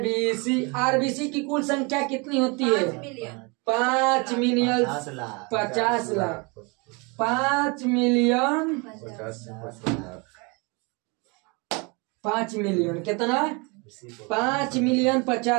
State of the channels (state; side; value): quieter; left; 29.9 dB